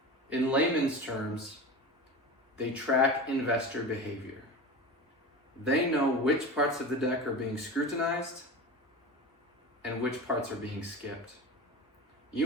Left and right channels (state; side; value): normal; both; correlation 0.29